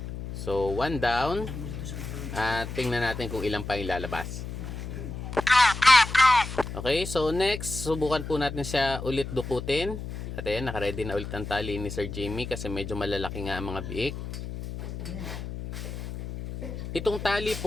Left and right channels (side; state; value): left; noise; hum, 7 dB below the sound